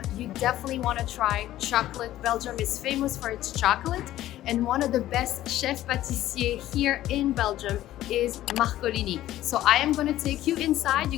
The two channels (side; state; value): right; quieter; 14.0 dB